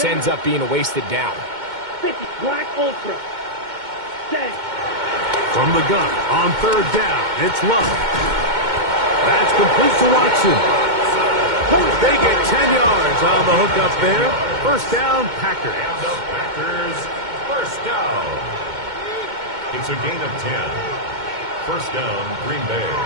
ends up being a wasted down. 50, Black Ultra. Set. From the gun on third down, it's Love. That's complete to Watson. They get 10 yards on the hook up there. First down, Packers. And the Packers, first down. It's a gain of 10. First down, Green Bay.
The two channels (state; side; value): late; left; 2.2 ms